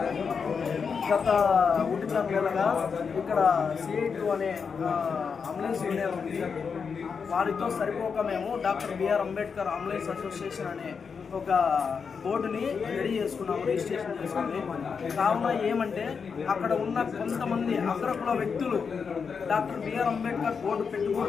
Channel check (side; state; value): right; quieter; 5.9 dB